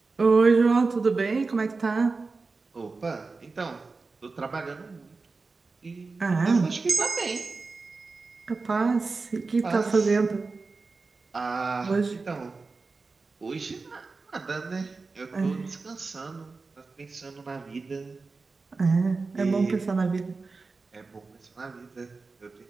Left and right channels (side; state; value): left; quieter; 4.0 dB